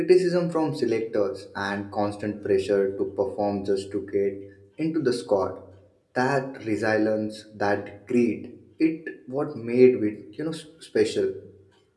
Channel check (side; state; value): both; identical; correlation 1.00